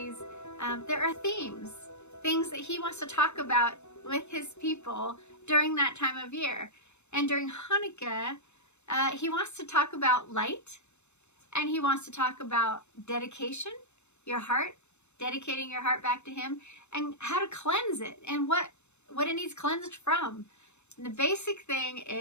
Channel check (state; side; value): late; right; 0.82 ms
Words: there are themes, things that he wants to talk about with his people during that time of year. And during Hanukkah, he wants to talk about light, and he wants to talk about dedication, your heart, dedicating your heart back to him, and how to cleanse it, and what it needs cleansed from. And the basic thing